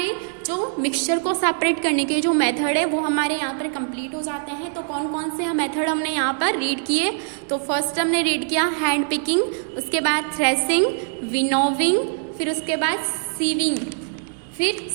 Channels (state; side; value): silent; left; digital silence